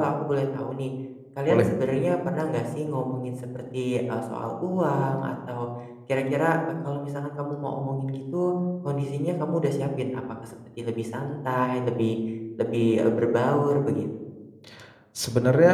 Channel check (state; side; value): identical; both; correlation 1.00